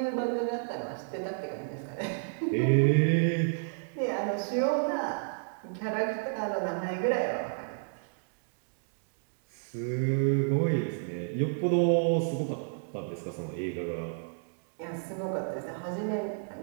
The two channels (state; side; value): silent; left; digital silence